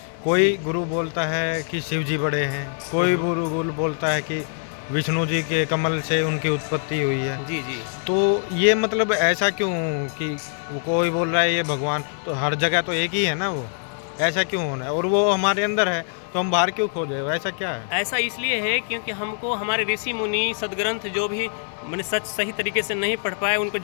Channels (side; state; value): right; silent; 63 dB below the other